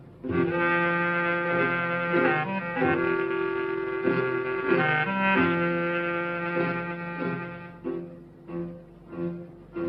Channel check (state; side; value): identical; both; correlation 1.00